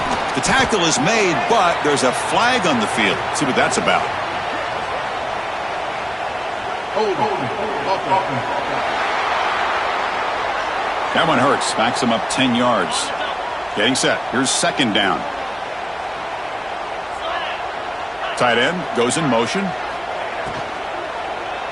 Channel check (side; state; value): both; identical; correlation 1.00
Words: The tackle is made, but there's a flag on the field. Let's see what that's about. That one hurts. Backs him up 10 yards. Getting set. Here's second down. Tight end goes in motion.